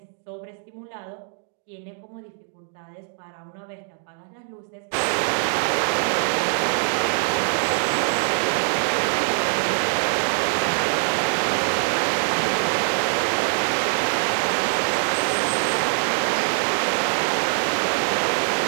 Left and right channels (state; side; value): silent; left; 63 dB below the other